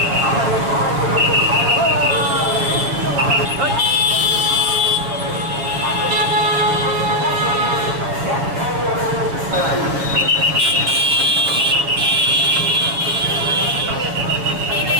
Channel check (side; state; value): left; late; 7.6 ms